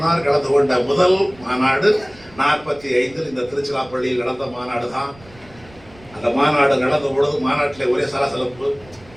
கலந்து கொண்ட முதல் மாநாடு 45 இந்த திருச்சிராப்பள்ளியில் நடந்த மாநாடு தான். அந்த மாநாடு நடந்த பொழுது மாநாட்டிலே ஒரே சலசலப்பு,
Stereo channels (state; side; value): noise; right; rumble, 24 dB below the sound